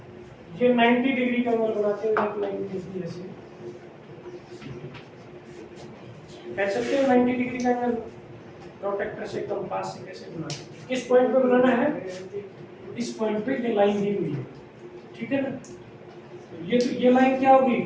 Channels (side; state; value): both; identical; correlation 1.00